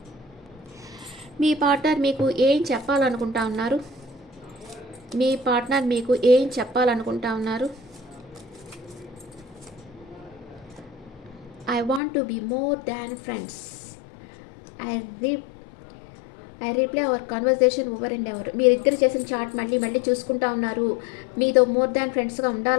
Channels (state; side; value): drops out; right; at 12.0 s